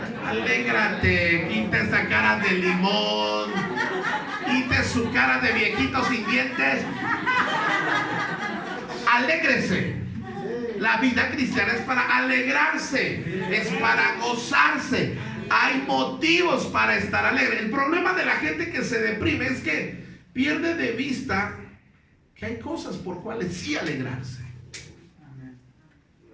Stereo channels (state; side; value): identical; both; correlation 1.00